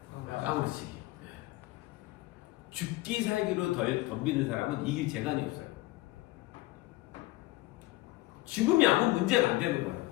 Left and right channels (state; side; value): quieter; right; 18.5 dB